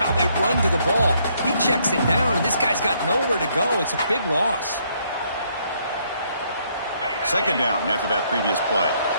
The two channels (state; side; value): inverted; both; correlation -0.70